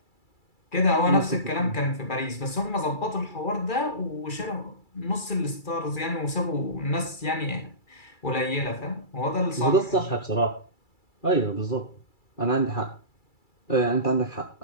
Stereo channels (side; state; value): right; late; 2.3 ms